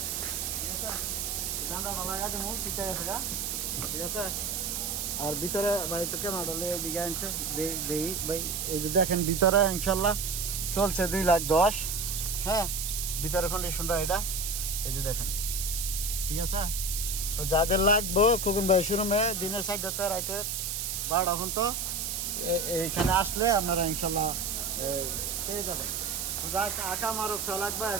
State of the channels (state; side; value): noise; right; hiss, 2 dB below the sound